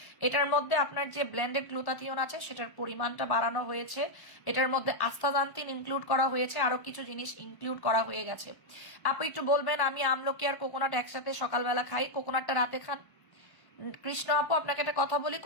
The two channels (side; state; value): right; late; 1.1 ms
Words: এটার মধ্যে আপনার যে ব্লেন্ডেড গ্লুটাথিয়ন আছে সেটার পরিমাণটা বাড়ানো হয়েছে, এটার মধ্যে আস্তাজান্তিন ইনক্লুড করা হয়েছে, আরো কিছু জিনিস ইনক্লুড করা হয়ে গেছে। আপু একটু বলবেন, আমি আমলকি আর কোকোনাট একসাথে সকালবেলা খাই, কোকোনাটটা রাতে খান। কৃষ্ণ আপু আপনাকে একটা কথা বলি,